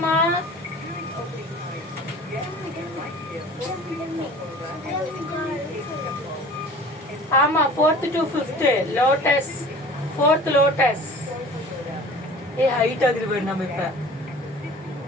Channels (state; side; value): normal; both; correlation 0.43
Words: ஆமா 4th to 5th lotus 4th lotus. Height ஆகுது பாரு நம்ம இப்ப.